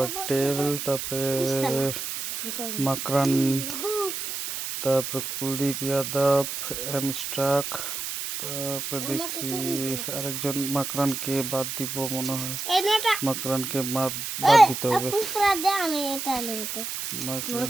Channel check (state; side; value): noise; right; hiss, 5 dB below the sound